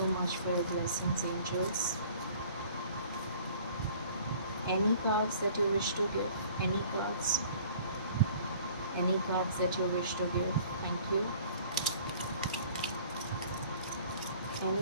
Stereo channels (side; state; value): both; inverted; correlation -0.51